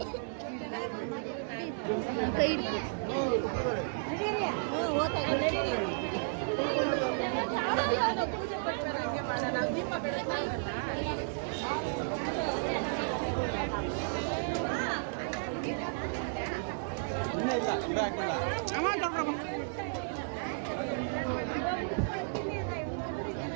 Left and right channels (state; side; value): silent; left; digital silence